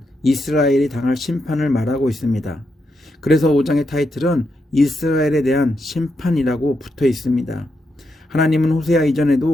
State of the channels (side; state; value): both; normal; correlation 0.83